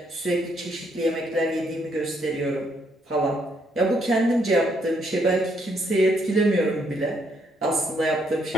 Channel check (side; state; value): both; normal; correlation 0.72